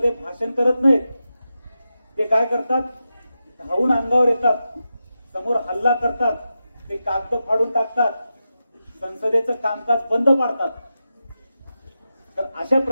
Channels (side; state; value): both; inverted; correlation -0.90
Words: भाषण करत नाहीत. ते काय करतात, धावून अंगावर येतात, समोर हल्ला करतात, ते कागद फाडून टाकतात, संसदेचं कामकाज बंद पाडतात. तर अशा